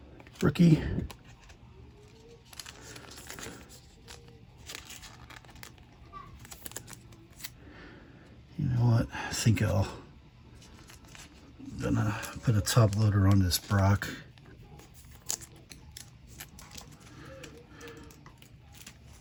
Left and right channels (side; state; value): both; identical; correlation 1.00